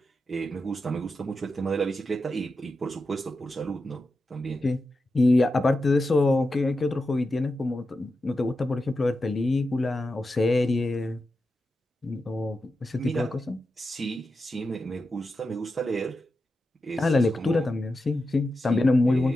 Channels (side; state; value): both; normal; correlation 0.90